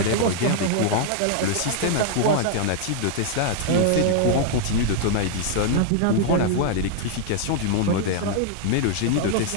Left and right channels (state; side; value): different; both; correlation 0.00